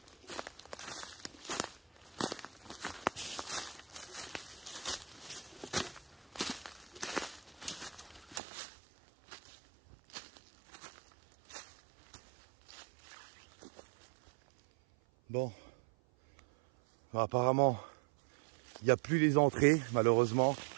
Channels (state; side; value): drops out; left; at 8.4 s